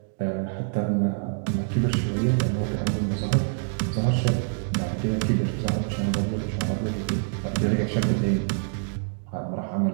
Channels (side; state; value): left; silent; digital silence